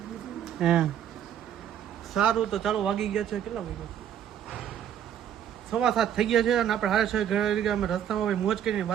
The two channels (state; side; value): quieter; left; 9.7 dB